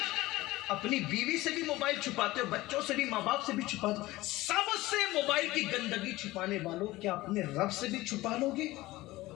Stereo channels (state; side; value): quieter; right; 18.6 dB